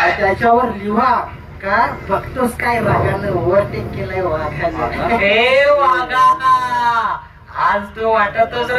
लिहा का बघतोस काय रागानं ओव्हरटेक केलाय वाघाने. हे वाघा, आज तू वाटतोस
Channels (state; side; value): identical; both; correlation 1.00